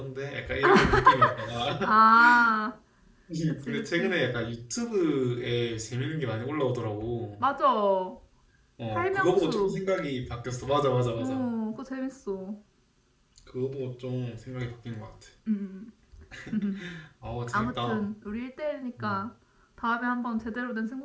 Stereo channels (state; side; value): identical; both; correlation 1.00